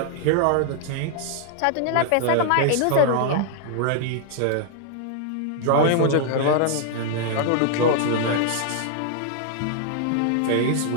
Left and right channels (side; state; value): both; different; correlation -0.01